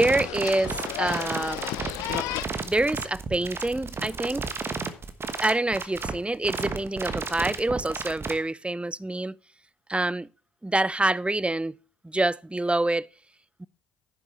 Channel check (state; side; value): normal; both; correlation 0.80